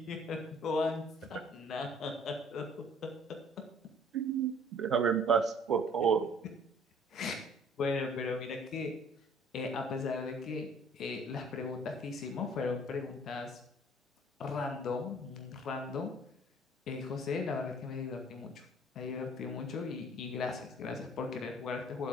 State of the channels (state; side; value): normal; both; correlation 0.55